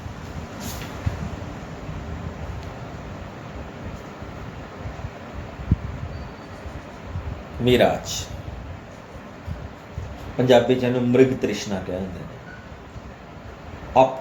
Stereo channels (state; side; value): identical; both; correlation 1.00